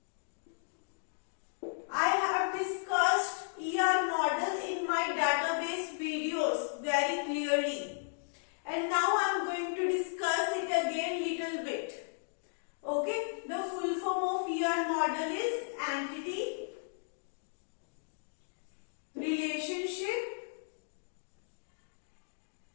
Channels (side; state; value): right; silent; digital silence